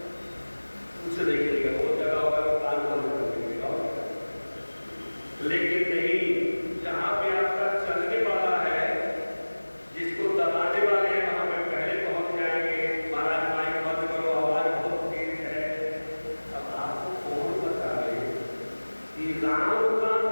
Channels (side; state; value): both; inverted; correlation -1.00